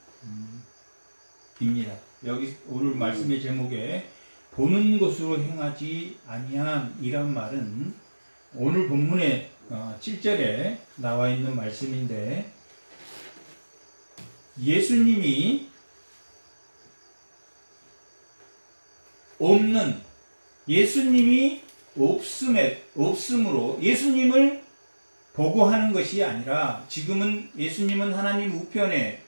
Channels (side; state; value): both; inverted; correlation -1.00